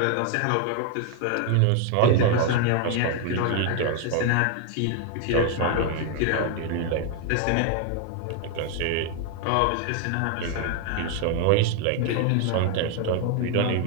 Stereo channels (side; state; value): both; different; correlation 0.00